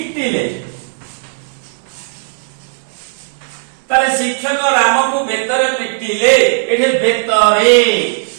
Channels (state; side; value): silent; left; 68 dB below the other